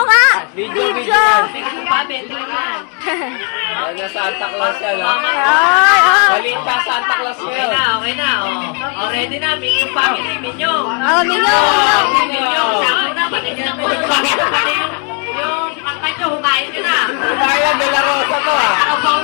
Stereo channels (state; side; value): quieter; right; 38.4 dB